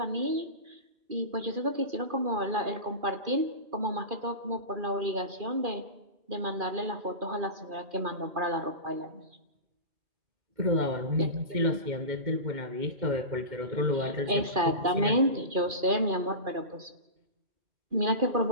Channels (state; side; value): late; left; 2.4 ms